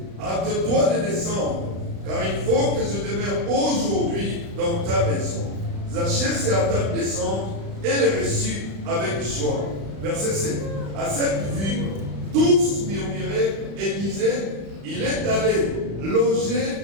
hâte-toi de descendre, car il faut que je demeure aujourd'hui dans ta maison. Zachée se hâta de descendre et le reçut avec joie. Verset 7. À cette vue, tous murmuraient et disaient, il est allé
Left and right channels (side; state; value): left; late; 35 ms